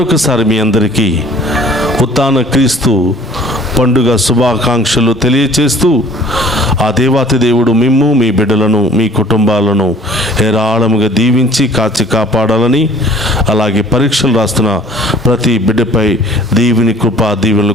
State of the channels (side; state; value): both; normal; correlation 0.53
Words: మీ అందరికీ ఉత్థాన క్రీస్తు పండుగ శుభాకాంక్షలు తెలియచేస్తూ ఆ దేవాతి దేవుడు మిమ్ము, మీ బిడ్డలను, మీ కుటుంబాలను హేరాళముగా దీవించి కాచి కాపాడాలని, అలాగే పరీక్షలు రాస్తున్న ప్రతి బిడ్డపై దీవిని కృపా దీవెనలు